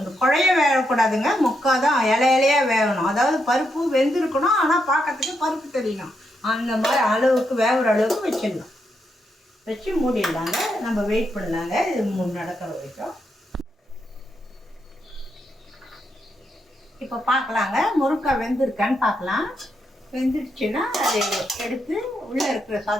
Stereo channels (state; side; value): normal; both; correlation 0.81